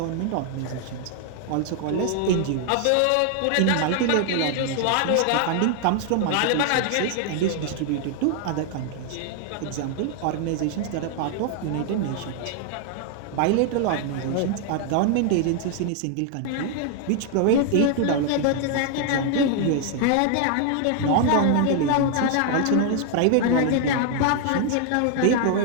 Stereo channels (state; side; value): different; both; correlation 0.00